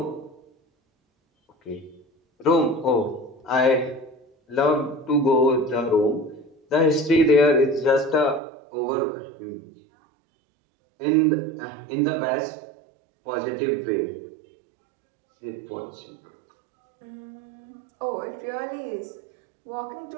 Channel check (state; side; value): drops out; left; at 8.4 s